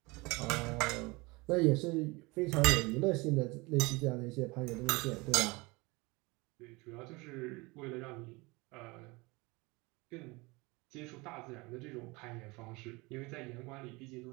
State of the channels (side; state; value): left; quieter; 24.9 dB